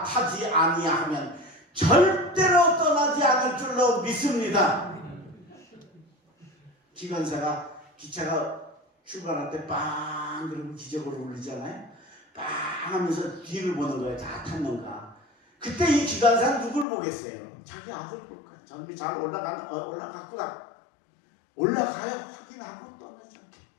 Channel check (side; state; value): right; drops out; at 16.9 s